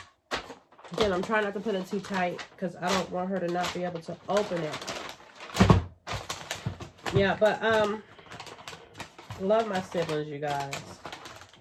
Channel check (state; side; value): identical; both; correlation 1.00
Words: Again, I'm trying not to put it too tight because I don't want her to not be able to open it. Yeah, but love my siblings, you guys.